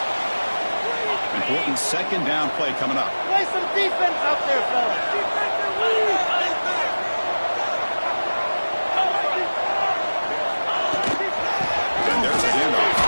Important 2nd down play coming up. Play some defense out there, fellas. And there's a handoff.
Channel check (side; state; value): both; inverted; correlation -1.00